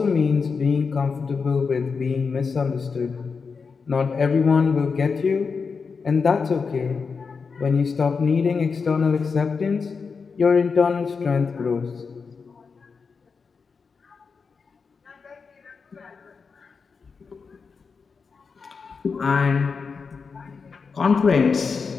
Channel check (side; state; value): right; quieter; 5.2 dB